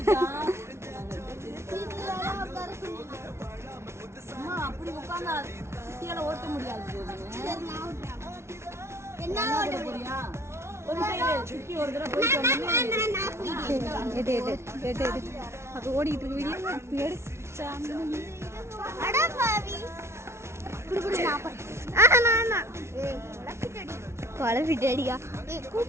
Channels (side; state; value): left; late; 0.13 ms